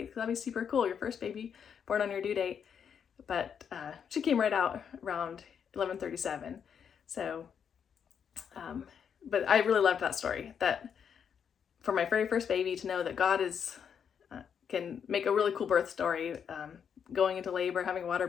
That'd be super cool. Your first baby born on your due date. But she came right out around 11:37. So, but I really loved that story, that for my very first baby to know that God can make a really cool birth story, going into labor, having a water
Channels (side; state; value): right; quieter; 7.6 dB